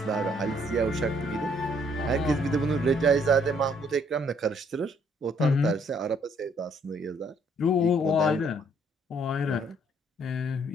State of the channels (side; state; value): both; normal; correlation 0.65